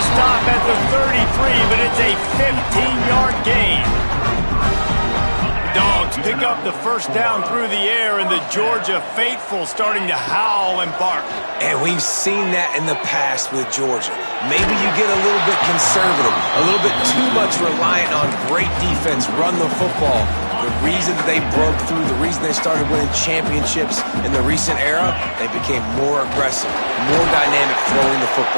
stop at the 33, but it's a 15-yard gain. Dogs pick up the first down through the air, and the Georgia faithful starting to howl and bark. And we've seen that in the past with Georgia. Maybe you get a little bit conservative, a little bit too much reliant on great defense, run the football. The reason they broke through, the reason they started winning championships in the recent era, they became more aggressive, more dynamic throwing the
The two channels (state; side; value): inverted; both; correlation -1.00